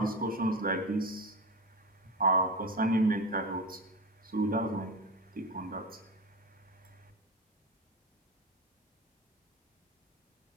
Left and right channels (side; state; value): both; normal; correlation 0.24